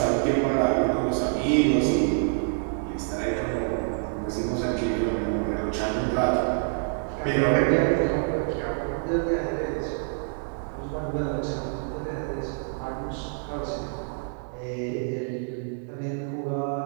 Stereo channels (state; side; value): silent; left; digital silence